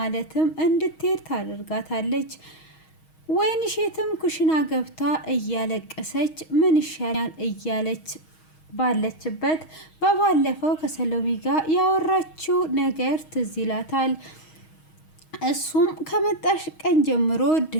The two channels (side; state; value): right; late; 6.3 ms